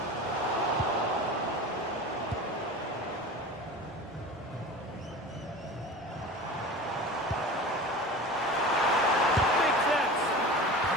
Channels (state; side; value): normal; both; correlation 0.35